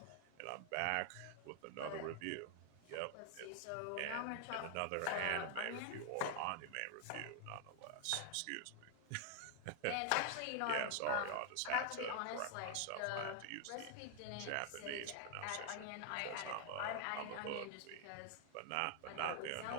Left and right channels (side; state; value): both; different; correlation 0.00